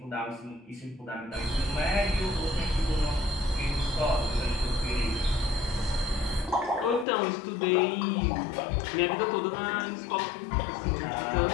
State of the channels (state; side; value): drops out; right; at 7.1 s